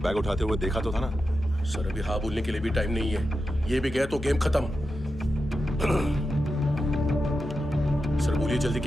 उठाते हुए देखा तो था ना? सर अभी हाँ बोलने के लिए भी टाइम नहीं है। ये भी गया तो गेम खत्म। सर बोलिए जल्दी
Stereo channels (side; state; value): left; noise; hum, 15 dB below the sound